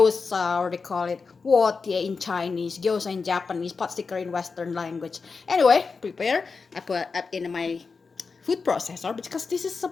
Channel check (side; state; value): right; quieter; 4.8 dB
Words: or they call it Wotie in Chinese, Gyoza in Japanese, pot sticker in Western language. Anyway, prepare. I put it in my food processor because this is a